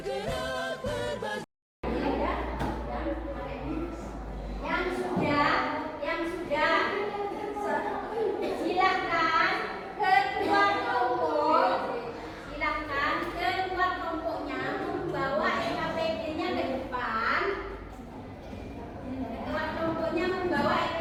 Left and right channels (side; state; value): both; identical; correlation 1.00